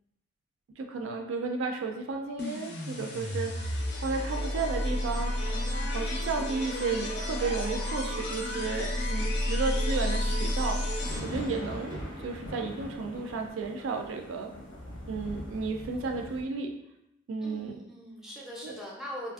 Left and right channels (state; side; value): normal; both; correlation 0.48